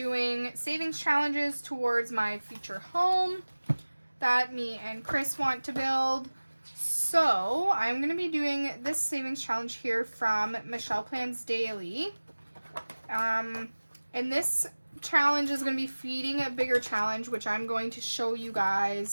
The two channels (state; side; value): inverted; both; correlation -1.00